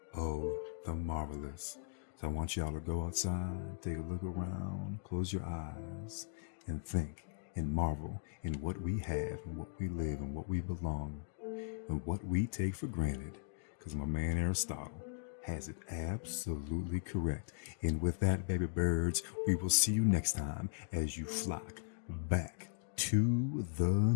of the marvelous. So I want y'all to go outside, take a look around, close your eyes, and think and marvel in what we have and what we live and what we belong and what we take for granted. Because my man Aristotle has it absolutely correct. And with that, baby birds, we will see you next time as you flock back to the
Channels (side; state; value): right; silent; digital silence